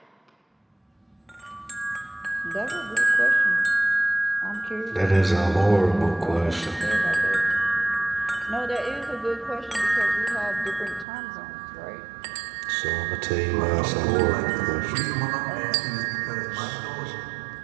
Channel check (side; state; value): left; drops out; at 11.1 s